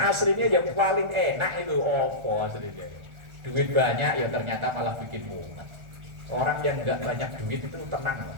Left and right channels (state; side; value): late; left; 1.4 ms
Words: aslinya yang paling enak itu opo aslinya. Duit banyak ya ternyata malah bikin mumet. Orang yang nggak banyak duit itu tenang.